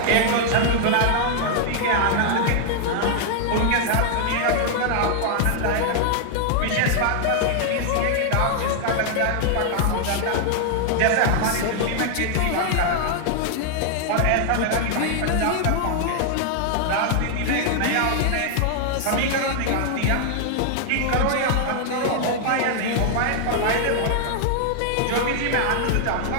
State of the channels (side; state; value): both; different; correlation 0.00